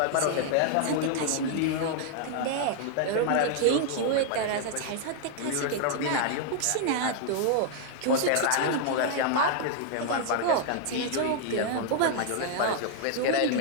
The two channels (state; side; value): different; both; correlation 0.00